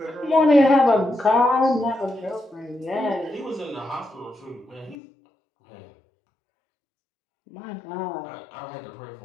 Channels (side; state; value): right; drops out; at 5.0 s